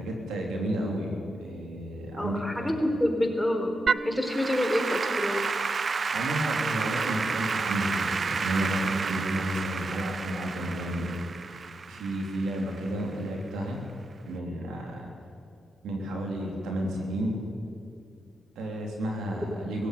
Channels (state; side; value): normal; both; correlation 0.86